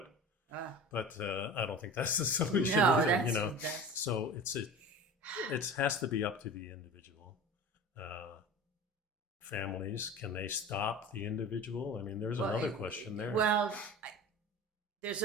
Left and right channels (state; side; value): normal; both; correlation 0.35